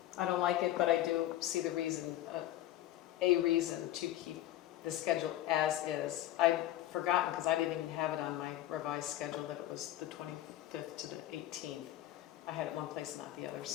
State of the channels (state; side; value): quieter; right; 13.9 dB